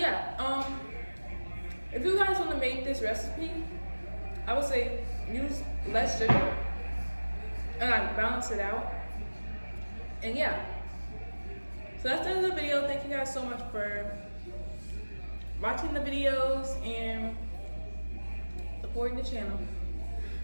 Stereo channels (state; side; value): inverted; both; correlation -1.00